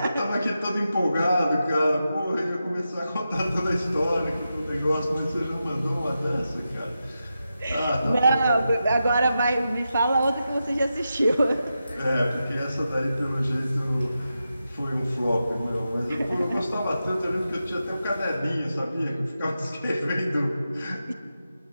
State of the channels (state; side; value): inverted; both; correlation -0.89